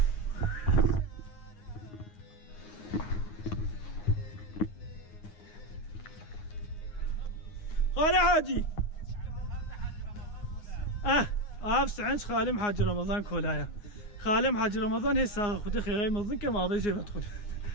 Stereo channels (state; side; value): late; right; 9.6 ms